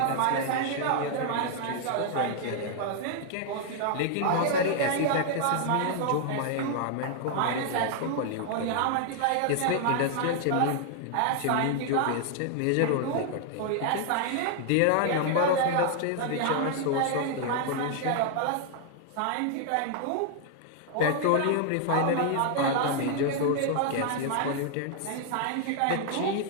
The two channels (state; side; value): different; both; correlation 0.00